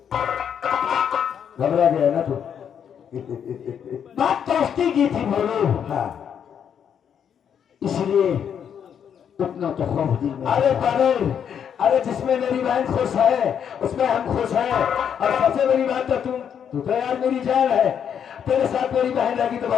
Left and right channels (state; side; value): quieter; right; 8.2 dB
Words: घबरा गया ना तू? बात दोस्ती की थी बोलो, हाँ। इसलिए उतना तो खौफ दिल में। अरे पागल, अरे जिसमें मेरी बहन खुश है उसमें हम खुश हैं। और सबसे बड़ी बात तो तू तो यार मेरी जान है, तेरे साथ मेरी बहन रहेगी तो